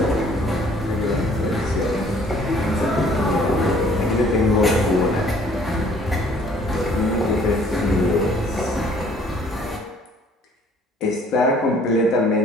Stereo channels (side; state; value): both; normal; correlation 0.58